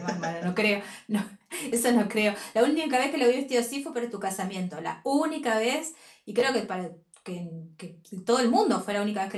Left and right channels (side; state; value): both; identical; correlation 1.00